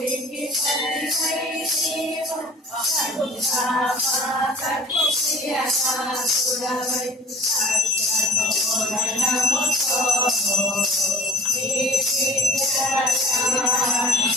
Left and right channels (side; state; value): both; normal; correlation 0.44